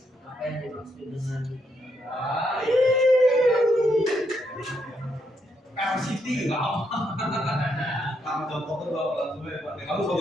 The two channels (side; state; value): both; normal; correlation 0.77